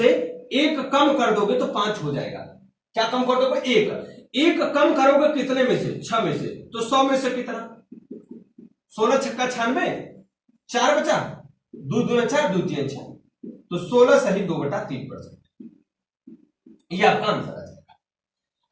1 कम कर दोगे तो 5 हो जाएगा। क्या कम कर दोगे, 1 कम करोगे कितने में से, 6 में से, तो 100 में से कितना, 16 छक्का 96, 4 बचा, 2 2 4, 2 3 6, तो 16 सही 2/3%। ये आपका आंसर आ जाएगा।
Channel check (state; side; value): identical; both; correlation 1.00